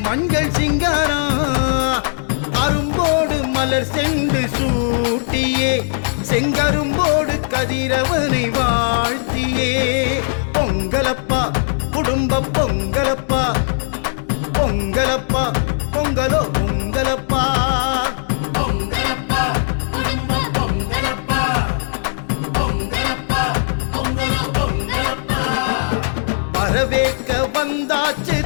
மஞ்சள் சிங்காரம், அரும்போடு மலர் சென்று சூட்டியே, செங்கரும்போடு கதிரவனை வாழ்த்தியே. பொங்கலப்பா குடும்ப பொங்கலப்பா, பொங்கலப்பா பொங்கலோ பொங்கலப்பா. பொங்கலப்பா குடும்ப பொங்கலப்பா, பொங்கலப்பா பொங்கலோ பொங்கலப்பா. வரவேற்க வந்தாச்சு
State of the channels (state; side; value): silent; right; digital silence